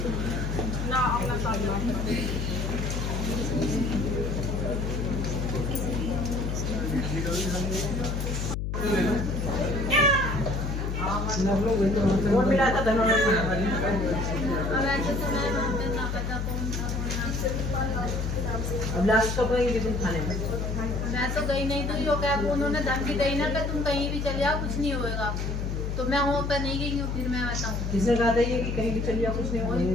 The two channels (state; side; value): noise; left; hum, 2 dB below the sound